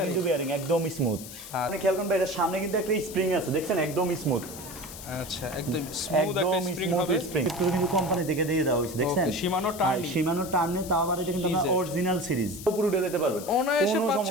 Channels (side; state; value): left; noise; hiss, 13 dB below the sound